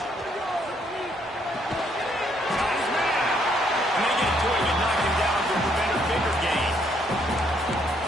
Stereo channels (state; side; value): normal; both; correlation 0.70